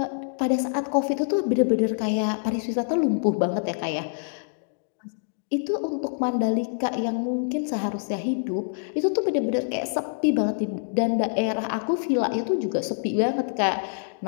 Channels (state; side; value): silent; right; digital silence